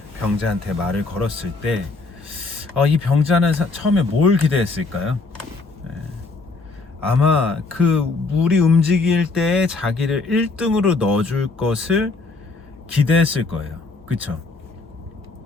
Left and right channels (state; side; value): quieter; right; 3.7 dB